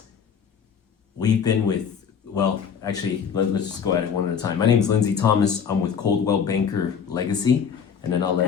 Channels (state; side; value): quieter; right; 7.1 dB